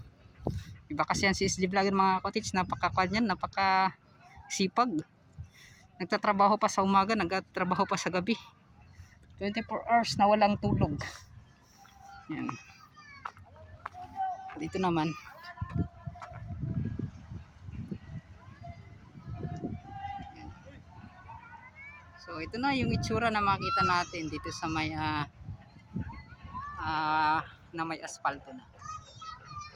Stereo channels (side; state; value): both; identical; correlation 1.00